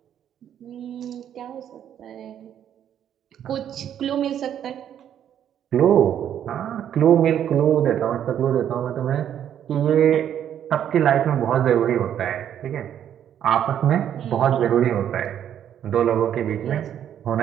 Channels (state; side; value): quieter; left; 9.9 dB